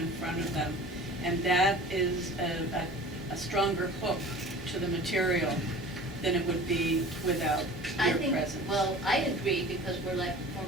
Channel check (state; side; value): normal; both; correlation 0.41